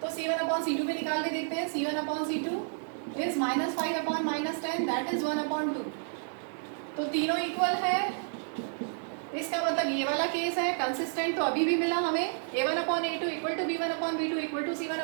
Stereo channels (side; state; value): left; silent; digital silence